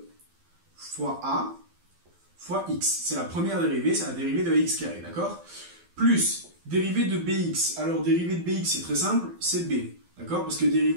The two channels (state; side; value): late; left; 12 ms